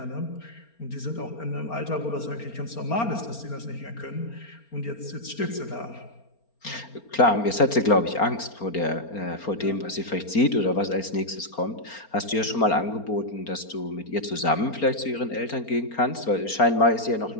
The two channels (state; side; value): late; right; 4.4 ms